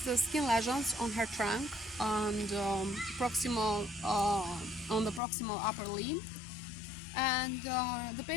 lesions on her trunk and on the proximal upper limb. And the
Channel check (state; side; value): drops out; right; at 5.2 s